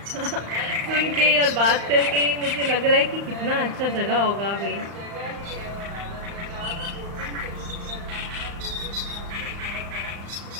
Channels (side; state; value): left; late; 35 ms